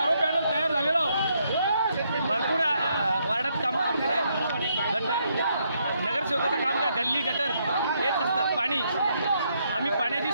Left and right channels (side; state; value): both; inverted; correlation -0.75